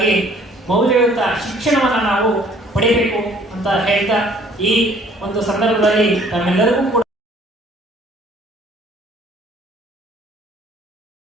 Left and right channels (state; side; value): normal; both; correlation 0.57